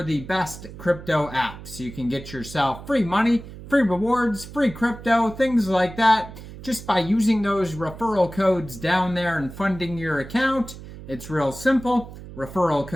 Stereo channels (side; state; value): right; noise; hum, 14 dB below the sound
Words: the best crypto apps. You can get yourself free money, free rewards, free crypto, things like that, just by using those referral codes down there and funding your account. It's real simple. Referral